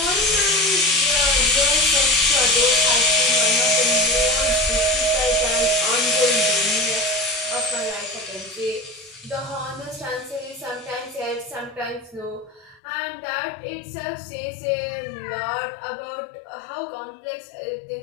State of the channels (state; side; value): drops out; right; at 12.8 s